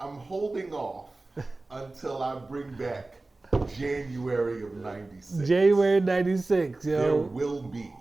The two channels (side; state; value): left; quieter; 3.2 dB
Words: I'm holding off until I bring back January of 96. January 96, yo. There will be